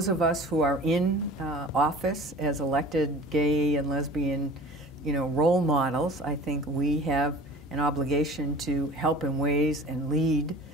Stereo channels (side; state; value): both; normal; correlation 0.42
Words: of us who are in office as elected gay and lesbian, role models, I think we have an obligation to help in ways and lead